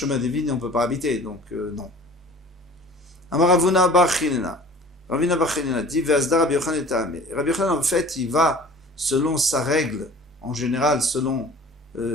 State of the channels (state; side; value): normal; both; correlation 0.46